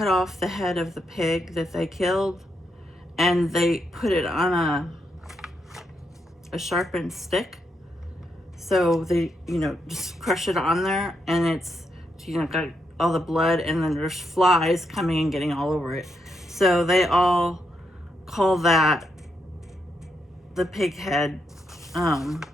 off the head of the pig that they killed, and they put it on a sharpened stick. So they, you know, just crush it on there, and it's, you know, got all the blood, and then there's flies coming and getting all over it. So they all call that the pig head.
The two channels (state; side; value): normal; both; correlation 0.81